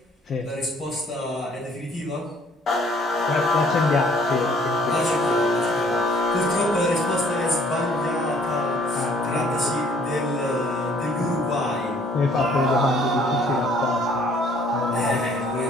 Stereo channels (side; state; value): both; normal; correlation 0.60